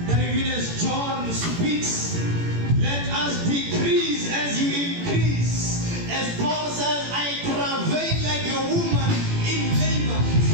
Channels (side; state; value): left; late; 18 ms